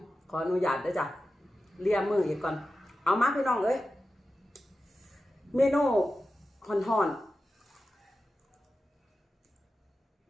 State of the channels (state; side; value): normal; both; correlation 0.93